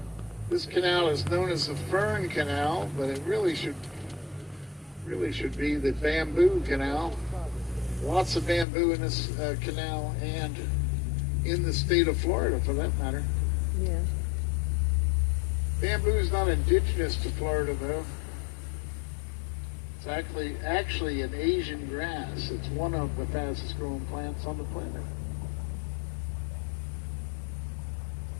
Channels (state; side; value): drops out; right; at 8.7 s